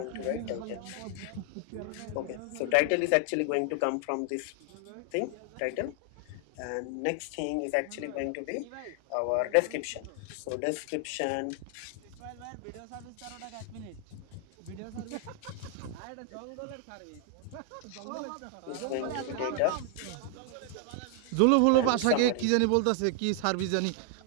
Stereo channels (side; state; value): both; different; correlation 0.00